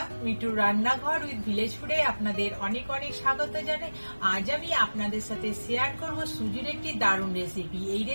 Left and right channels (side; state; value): both; inverted; correlation -1.00